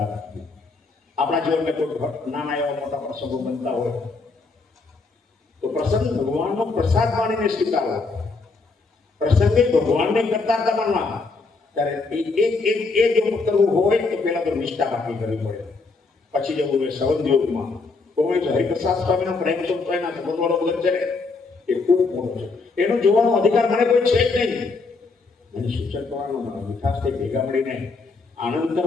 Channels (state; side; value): quieter; right; 4.0 dB